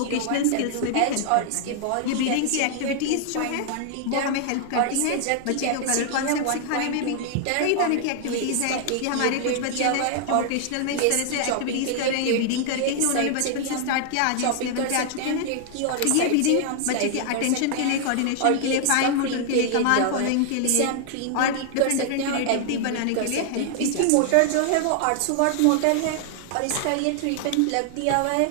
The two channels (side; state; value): both; different; correlation 0.00